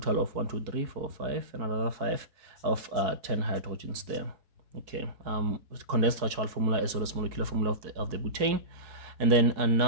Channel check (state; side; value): late; left; 4.7 ms